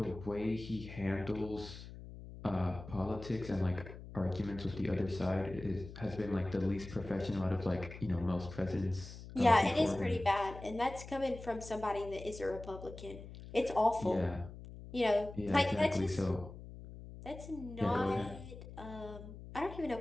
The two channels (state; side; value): noise; left; hum, 13 dB below the sound